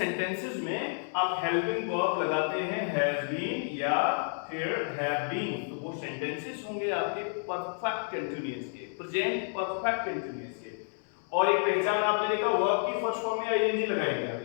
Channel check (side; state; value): right; silent; 58 dB below the other